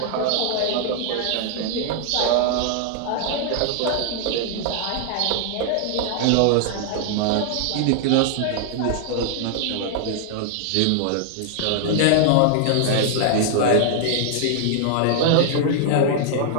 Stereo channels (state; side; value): different; both; correlation 0.00